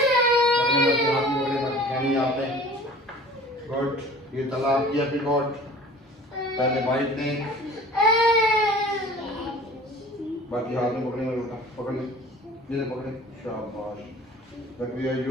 आपने गुड। ये तला आपकी एप्रीकॉट, पहले बाइट दें, बाकी हाथ में पकड़ने में रुका, पकड़ ले, जिसे पकड़े, शाबाश। But we are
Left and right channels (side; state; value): both; normal; correlation 0.45